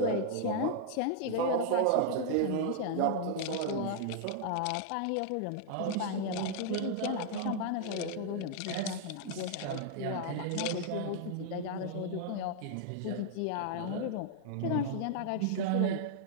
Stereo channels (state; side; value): different; both; correlation -0.01